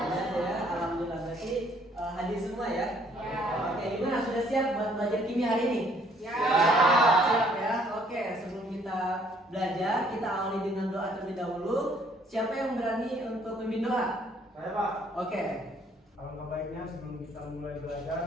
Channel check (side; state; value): both; normal; correlation 0.63